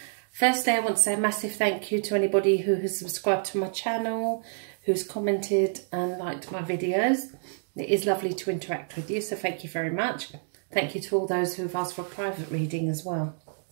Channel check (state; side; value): silent; left; digital silence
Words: Firstly, I want to say a massive thank you to anybody who has subscribed to my channel, who's commented and liked my videos. It is lovely to interact with you, so thank you very much. Thank you to all those who have asked for a private reading as well.